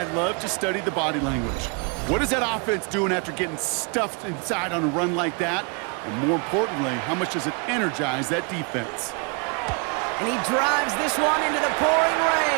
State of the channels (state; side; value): quieter; left; 34.7 dB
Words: love to study the body language. What is that offense doing after getting stuffed inside on a run like that? And more importantly, how much does it energize that defense? And he drives this one into the pouring